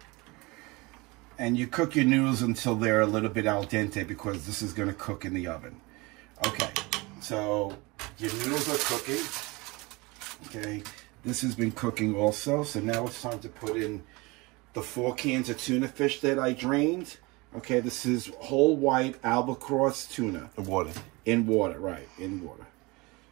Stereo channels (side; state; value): left; quieter; 24.7 dB